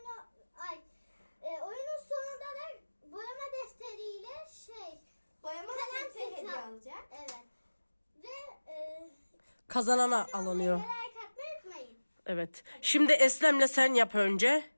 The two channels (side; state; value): both; inverted; correlation -1.00